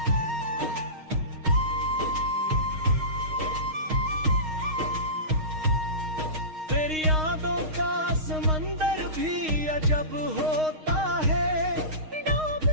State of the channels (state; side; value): late; left; 6.4 ms